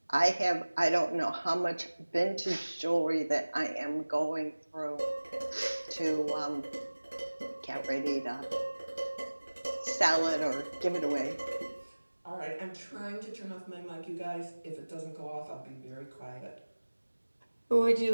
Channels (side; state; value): both; inverted; correlation -1.00